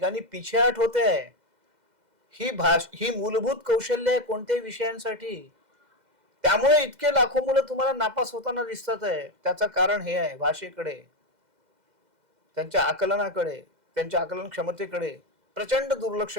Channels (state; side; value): late; left; 2.0 ms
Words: पिछेहाट होते आहे. ही मूलभूत कौशल्य आहे कोणत्याही विषयांसाठी. त्यामुळे इतके लाखो मुलं तुम्हाला नापास होताना दिसतात आहे. त्याचं कारण हे आहे, भाषेकडे, त्यांच्या आकलनाकडे, त्यांच्या आकलन क्षमतेकडे प्रचंड दुर्लक्ष